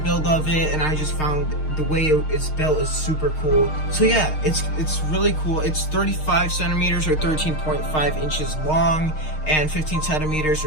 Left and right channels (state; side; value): late; right; 6.5 ms